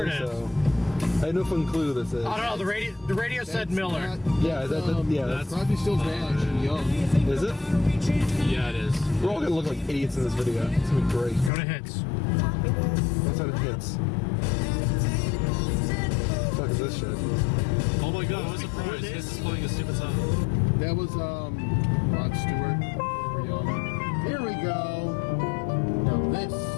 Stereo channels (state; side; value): drops out; right; at 11.5 s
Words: it is. so. I had no fucking clue who this is. I don't know, the radio said Miller. Yeah, that's Crosby, Stills Nash and Young. Is it? Yeah, it is. We're all gonna look like idiots in this video. It's gonna be great. Go to hits. What's out of hits? What the fuck is this shit? Oh my god, what a surprise. Hits is playing a stupid song. That was Rod Stewart. Young. Here we go. Now this,